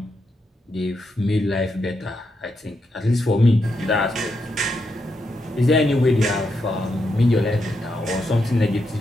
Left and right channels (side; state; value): both; normal; correlation 0.83